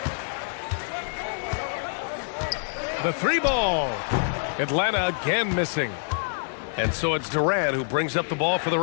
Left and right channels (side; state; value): right; silent; digital silence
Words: The three ball. Atlanta again missing. And so it's Durant who brings up the ball for the